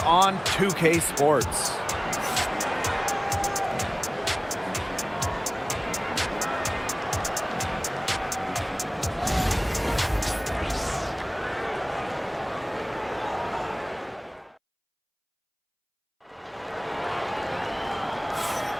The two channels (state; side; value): identical; both; correlation 1.00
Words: on 2K Sports.